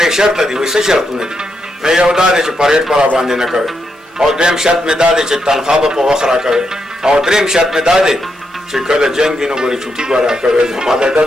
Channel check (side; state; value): both; normal; correlation 0.82